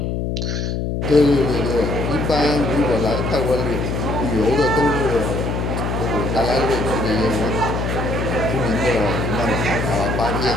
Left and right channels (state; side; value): noise; left; hum, 1 dB below the sound